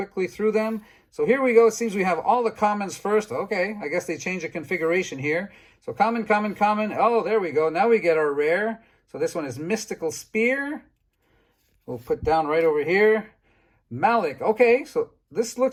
through them. So here we go. It seems we have all the commons first. Okay, I guess they changed the configuration here. So common, common, common. Oh, there we go. Now we get our rare. So this one is Mystical Spear. We'll put down right over here. Malik. Okay, so this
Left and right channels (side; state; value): both; identical; correlation 1.00